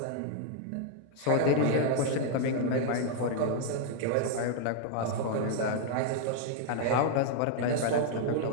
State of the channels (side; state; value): both; different; correlation 0.00